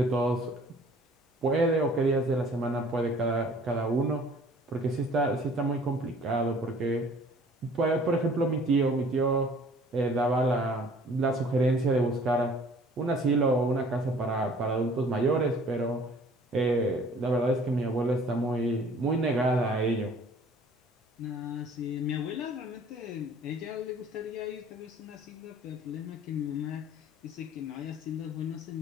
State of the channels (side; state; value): both; normal; correlation 0.53